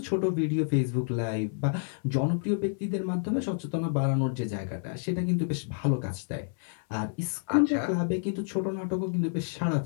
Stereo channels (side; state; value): right; silent; 59 dB below the other